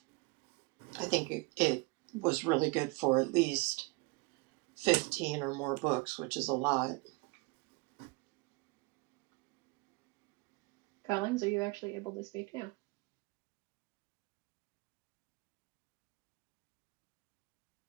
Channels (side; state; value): left; quieter; 27.0 dB